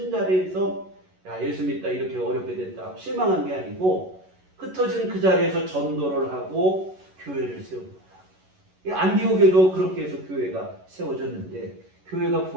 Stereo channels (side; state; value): left; late; 11 ms